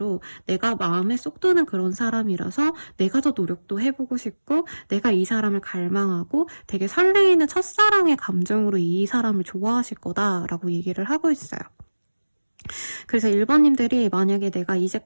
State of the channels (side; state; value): both; inverted; correlation -1.00